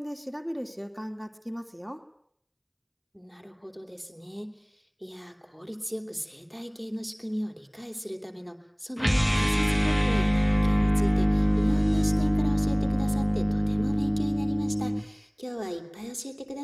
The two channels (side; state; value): both; identical; correlation 1.00